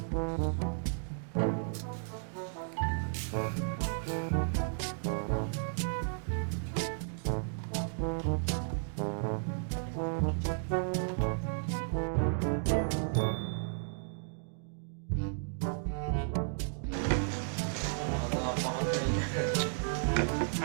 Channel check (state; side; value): silent; left; digital silence